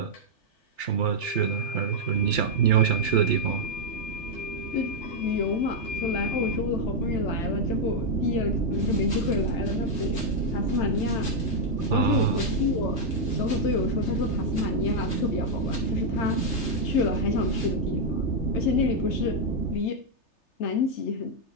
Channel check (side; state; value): right; late; 3.3 ms